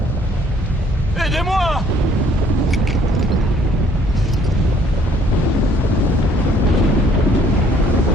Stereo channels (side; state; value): both; normal; correlation 0.61